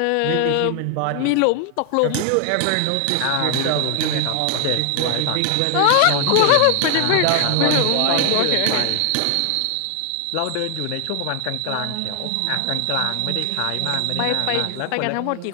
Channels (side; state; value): both; different; correlation 0.00